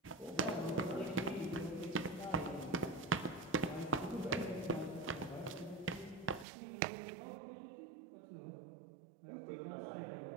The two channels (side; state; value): left; drops out; at 6.5 s